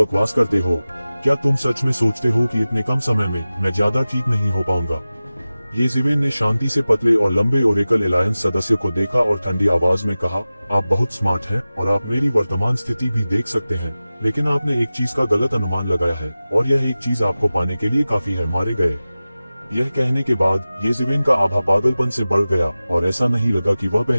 करते हो। क्या तुम सच में सोचते हो कि इतने कम समय में मैं ज्यादा ठीक नहीं हो पाऊंगा? येज़ेबेल ने शांति से पतले और लंबे ओरेकल एलायंस सदस्य को देखा और ठंडी आवाज में कहा, आप बहुत स्मार्ट हैं और आप मेरी वर्तमान स्थिति भी देख सकते हैं, लेकिन आपने एक चीज का गलत अनुमान लगाया है, और यह एक चीज आपको पाने के लिए काफी है, मारे गए। यह कहने के बाद येज़ेबेल का आभा पागलपन से बढ़ गया और ऐसा नहीं लगा कि वह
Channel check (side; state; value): both; inverted; correlation -0.96